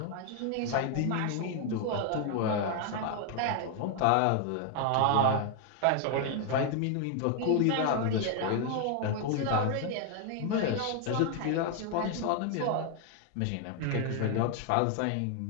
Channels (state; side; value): different; both; correlation 0.00